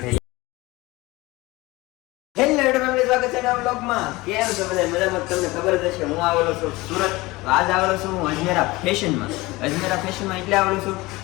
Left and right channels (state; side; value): quieter; right; 21.2 dB